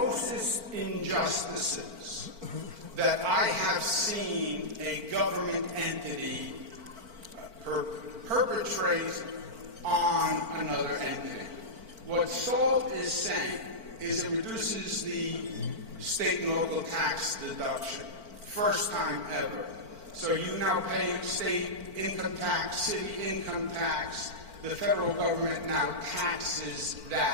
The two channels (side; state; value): left; late; 4.5 ms